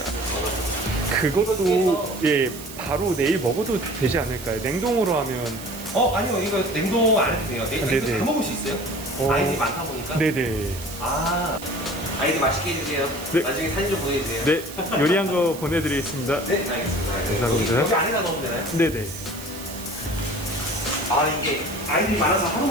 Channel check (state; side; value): noise; right; hiss, 14 dB below the sound